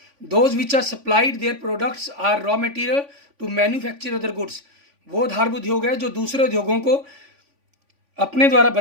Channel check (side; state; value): left; late; 3.5 ms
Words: those which are supplied their products are raw material to manufacture other goods. वो आधारभूत उद्योग है जो दूसरे उद्योगों को अपने द्वारा